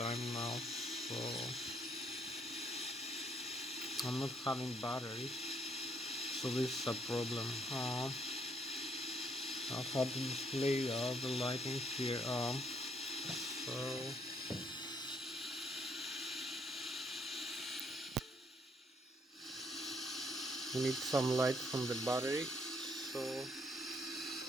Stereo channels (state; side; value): normal; both; correlation 0.69